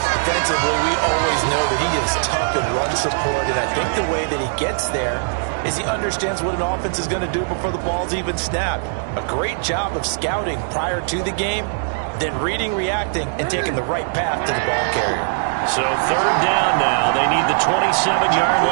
Defensively, we always know that he is tough in run support, and I think the way that he gets there is he understands what an offense is going to do before the ball's even snapped. A great job of scouting prior to the game, then reading, reacting, and taking the right path to the ball carrier. So 3rd down now. They need the 27-yard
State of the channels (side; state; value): left; silent; digital silence